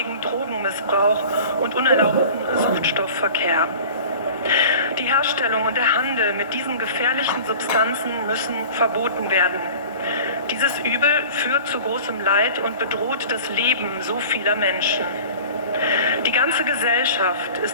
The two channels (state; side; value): inverted; both; correlation -0.41